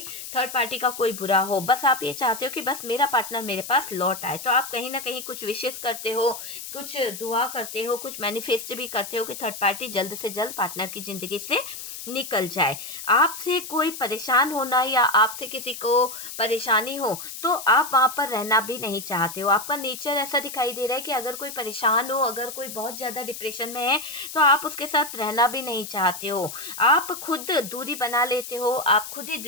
थर्ड पार्टी का कोई बुरा हो, बस आप ये चाहते हो कि बस मेरा पार्टनर मेरे पास लौट आए। तो आप कहीं ना कहीं कुछ विशेष करते हो, कुछ दुआ करते हो, कुछ मैनिफेस्ट भी करते हो कि थर्ड पार्टी जल्द से जल्द पार्टनर की ज़िंदगी से निकल जाए। आपसे कोई परेशान होना या आपसे किसी को परेशानी हो तो आप वहाँ पर रहना भी नहीं चाहते हो। आपका नेचर ऐसा दिखाई दे रहा है कि अगर कोई परेशान हो, अगर कोई बहुत ज़्यादा डिप्रेशन में है तो आप उसके साथ रहना भी नहीं चाहते हो। आप खुद दूरी बना लेते हो, आप खुद ही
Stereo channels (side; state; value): left; noise; hiss, 10 dB below the sound